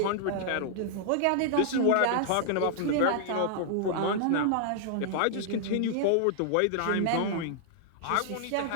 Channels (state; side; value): different; both; correlation -0.01